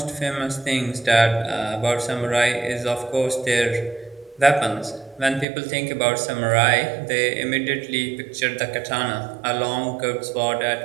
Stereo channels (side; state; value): left; drops out; at 5.5 s